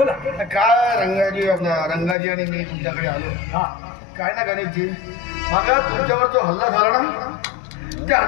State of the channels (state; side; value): drops out; right; at 2.1 s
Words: काय रंगाजी आणि मी तुमच्याकडे आलो. काय ना गणेशजी, मग तुमच्यावर जो हल्ला झाला ना, त्या